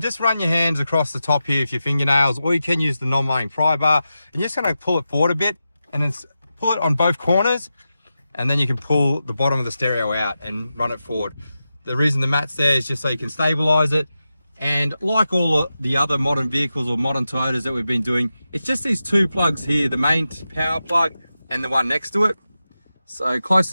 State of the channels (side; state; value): both; inverted; correlation -0.91